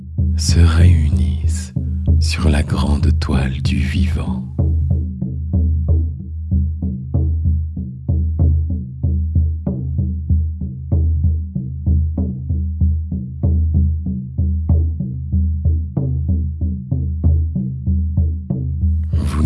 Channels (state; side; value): identical; both; correlation 1.00